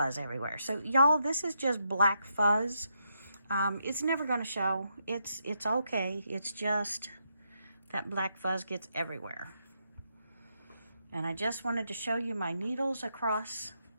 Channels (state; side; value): inverted; both; correlation -0.81